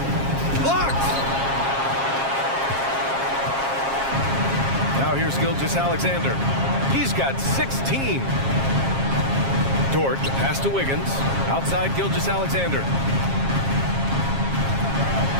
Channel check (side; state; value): left; late; 7.4 ms